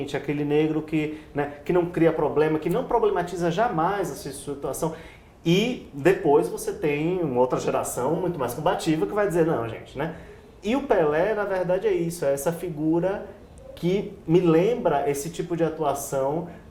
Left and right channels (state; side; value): identical; both; correlation 1.00